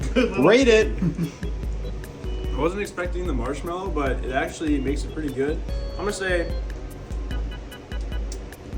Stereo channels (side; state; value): both; identical; correlation 1.00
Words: Rate it. I wasn't expecting the marshmallow, but it actually makes it pretty good. I'm gonna say